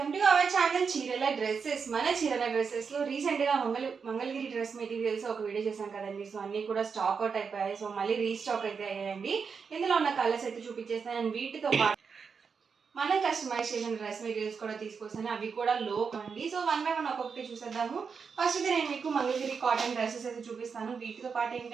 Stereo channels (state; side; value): quieter; left; 5.8 dB